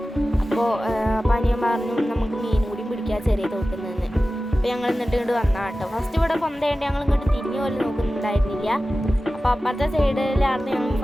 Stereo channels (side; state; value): both; normal; correlation 0.95